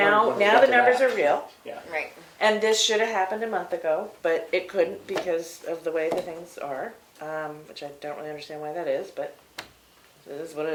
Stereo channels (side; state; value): both; identical; correlation 1.00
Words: when we the get to numbers that. are real. Yeah. Right. And this should have happened a month ago, but it couldn't because of the way the things are, which I don't really understand why that is, but it is what it